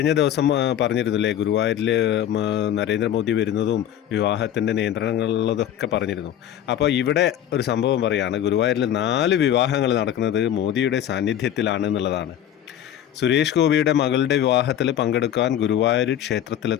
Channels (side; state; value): right; quieter; 10.8 dB